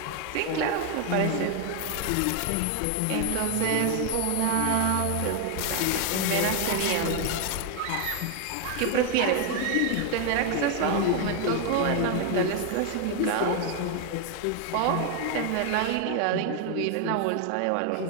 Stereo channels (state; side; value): different; both; correlation 0.01